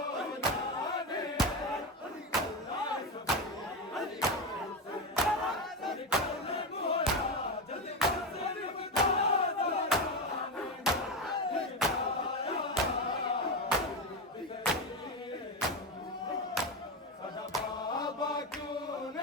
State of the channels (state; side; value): normal; both; correlation 0.15